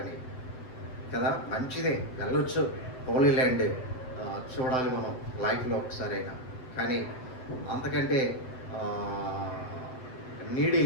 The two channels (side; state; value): right; late; 7.9 ms